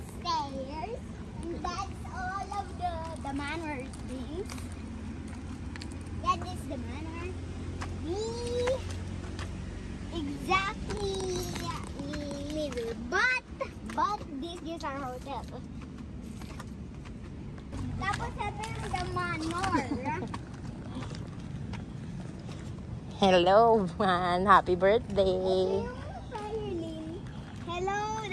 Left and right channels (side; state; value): both; identical; correlation 1.00